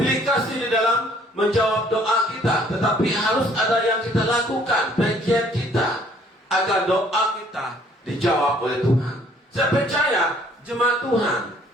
kasih di dalam menjawab doa kita, tetapi harus ada yang kita lakukan, bagian kita, agar doa kita dijawab oleh Tuhan. Saya percaya jemaat Tuhan,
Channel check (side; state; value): both; normal; correlation 0.60